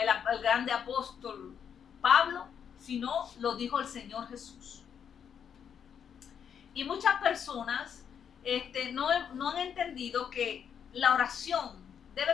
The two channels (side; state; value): right; quieter; 7.9 dB